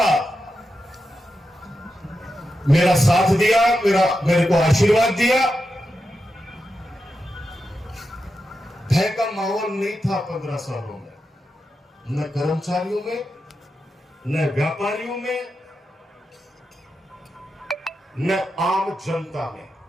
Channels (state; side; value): normal; both; correlation 0.88